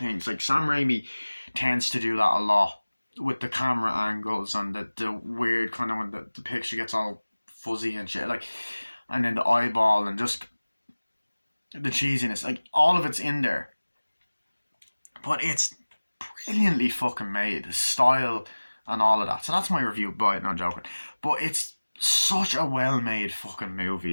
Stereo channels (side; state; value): both; inverted; correlation -1.00